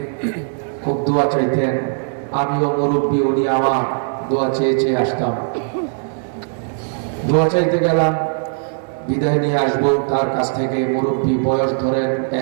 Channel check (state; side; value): silent; left; digital silence